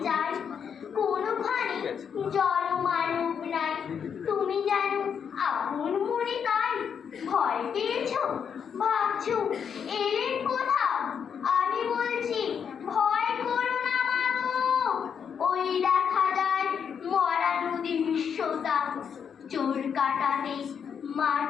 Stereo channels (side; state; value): right; quieter; 7.3 dB